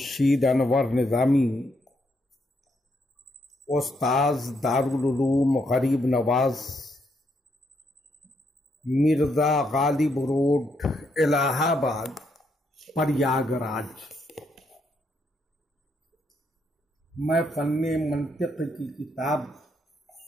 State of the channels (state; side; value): normal; both; correlation 0.76